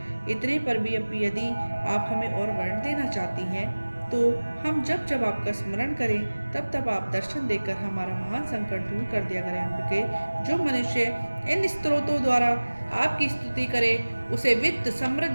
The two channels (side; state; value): both; inverted; correlation -1.00